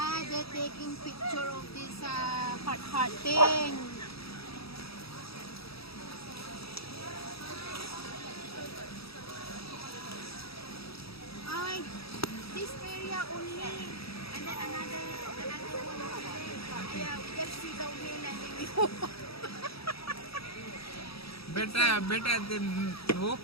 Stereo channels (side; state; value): right; late; 0.77 ms